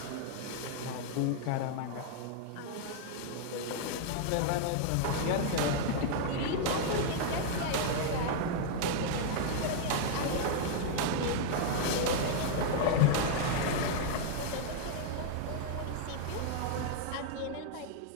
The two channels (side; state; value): both; different; correlation -0.01